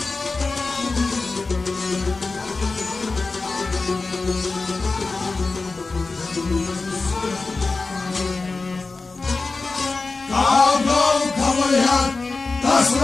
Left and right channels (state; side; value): quieter; right; 3.8 dB